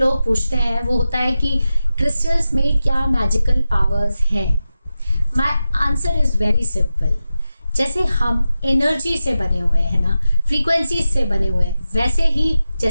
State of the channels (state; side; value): inverted; both; correlation -0.93